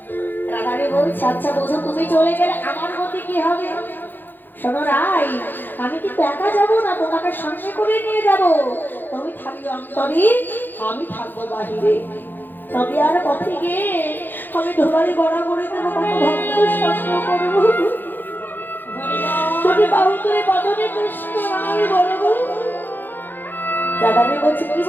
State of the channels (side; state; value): right; late; 0.091 ms